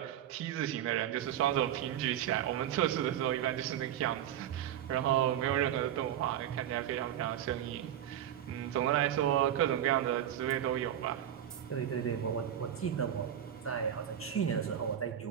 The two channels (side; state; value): left; quieter; 10.6 dB